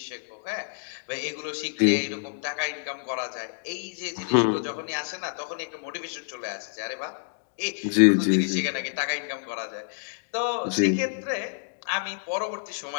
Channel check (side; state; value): right; silent; digital silence